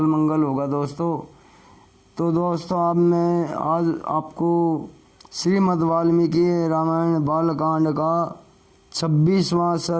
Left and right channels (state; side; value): identical; both; correlation 1.00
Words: मंगल होगा दोस्तों। तो दोस्तों मैं आज आपको श्रीमद् वाल्मीकि रामायण बालकांड का 26वां